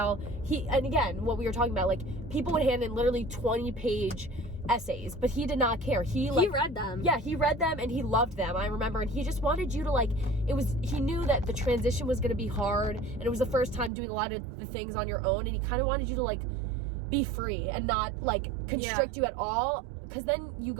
and again, what we were talking about, like, people would hand in literally 20-page essays, but he did not care. He read them. Yeah, he read them and he loved them, I remember, and he just wanted you to like, he knew that the transition was going to be hard, and it was the first time doing a lot of the things on your own, and he kind of wanted you to like be free and not like constrict you at all, because then you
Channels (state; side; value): drops out; left; at 13.9 s